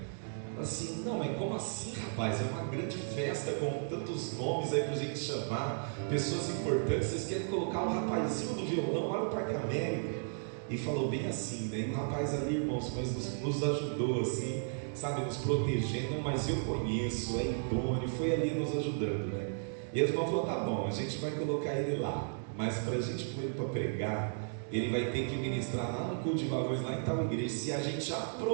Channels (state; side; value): silent; left; digital silence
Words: Assim, não, mas como assim, rapaz? É uma grande festa com tantos nomes aí pra gente chamar, pessoas importantes. Vocês querem colocar o rapazinho do violão lá no Parque América? E falou bem assim, né? E o rapaz ali, irmãos, mas nos ajudou assim, sabe, nos protegendo. Mas eu conheço, é idôneo, foi ali nos ajudando, né? E os irmãos falaram, tá bom, a gente vai colocar ele lá, mas pra gente pôr ele pra pregar, ele vai ter que ministrar lá no culto de varões, lá em tal igreja, se a gente